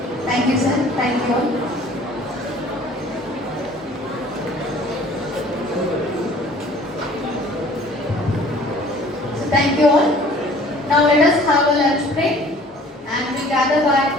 Thank you, sir. Thank you all. So thank you all. Now let us have a lunch break and we gather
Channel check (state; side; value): normal; both; correlation 0.51